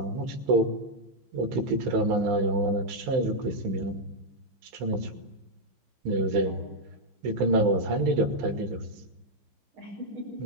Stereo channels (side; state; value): left; late; 15 ms